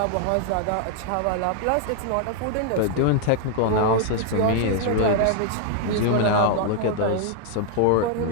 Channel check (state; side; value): different; both; correlation 0.00